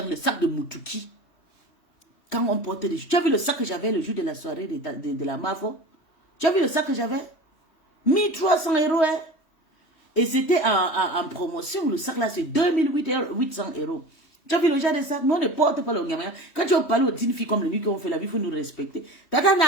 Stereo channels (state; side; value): late; right; 3.1 ms